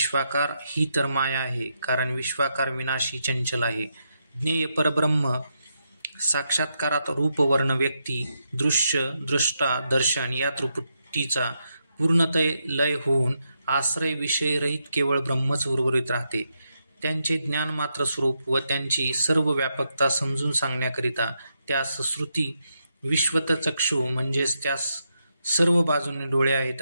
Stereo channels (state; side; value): inverted; both; correlation -0.83